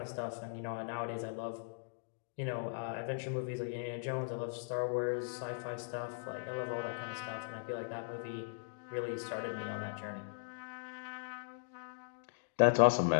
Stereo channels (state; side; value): silent; right; digital silence